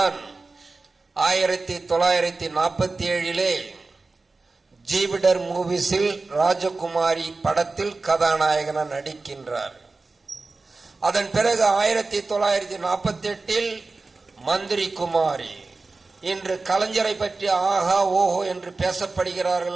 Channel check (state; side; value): quieter; left; 3.7 dB